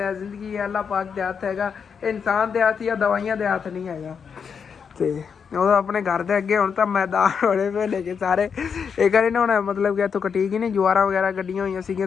जिंदगी है, अल्लाह पाक दे हथ हैगा, इंसान दे हथ या दवाइयां दे हथ नहीं हैगा। तो ਉਹ ਆਪਣੇ ਘਰ ਦੇ ਅੱਗੇ ਹੁਣ ਤਾਂ ਮੈਦਾਨ ਹੋਣੇ ਪਏ ਨੇ ਕਿ ਸਾਰੇ ਇਹ ਕਰੇ ਨਾ, ਹੁਣ ਮਤਲਬ ਕਿ ਇੱਥੋਂ ਕਟੀ ਗਈ ਨੇ ਜਵਾਰਾਂ ਵਗੈਰਾ ਕੱਢੀਆਂ ਹੋਈਆਂ ਸੀਗੀਆਂ,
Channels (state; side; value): quieter; right; 6.5 dB